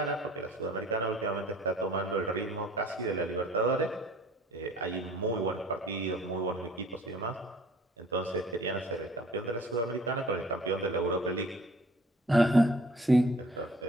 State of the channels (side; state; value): both; normal; correlation 0.52